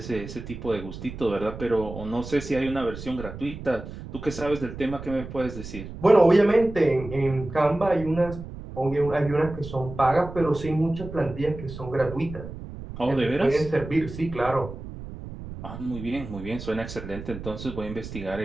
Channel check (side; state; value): right; noise; rumble, 11 dB below the sound